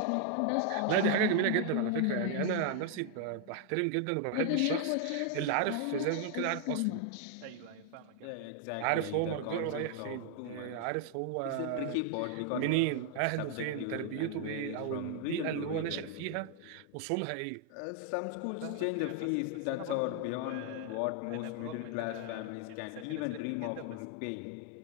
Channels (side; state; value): both; different; correlation 0.00